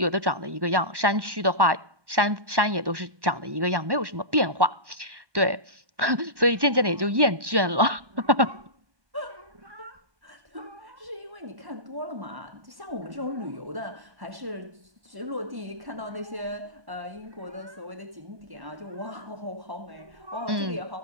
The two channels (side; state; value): left; late; 1.2 ms